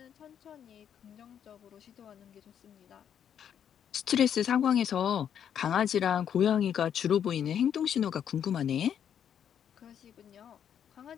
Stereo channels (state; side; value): quieter; right; 8.9 dB